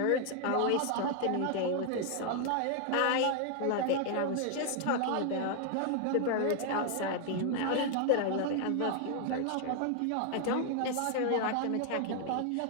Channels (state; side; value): different; both; correlation 0.00